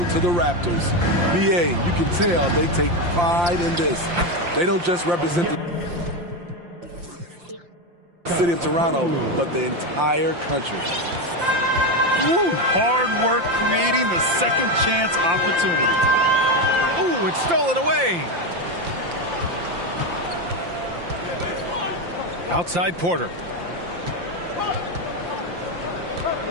to the Raptors. BA, you can tell they take pride in this. They don't just represent the city of Toronto, but the entire country. Woo, hard work creating the second chance opportunity. Ooh, it's stolen away. Outside Porter.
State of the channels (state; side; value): late; left; 5.8 ms